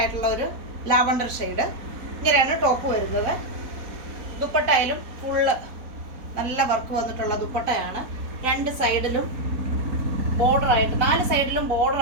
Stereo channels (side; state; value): left; late; 4.2 ms